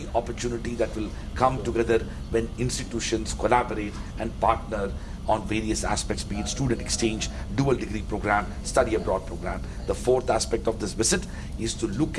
opportunity that will come together when institutions collaborate and partner on various aspects, be it student exchange, dual degree program, study abroad program. The fourth aspect of this visit is to look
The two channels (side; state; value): both; identical; correlation 1.00